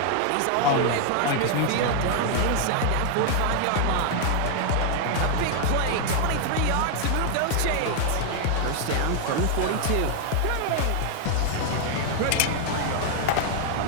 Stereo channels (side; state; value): both; different; correlation 0.00